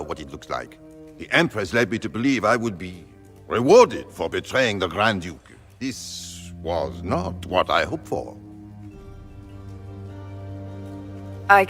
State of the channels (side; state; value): both; identical; correlation 1.00